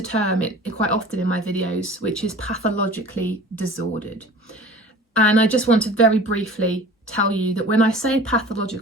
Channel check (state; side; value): normal; both; correlation 0.43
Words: term quite often in my videos, which is pathologically disordered. And I just want to very briefly tell you that when I say